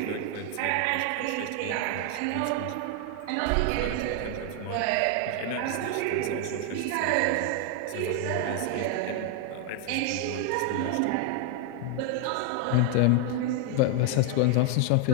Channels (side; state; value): both; different; correlation 0.00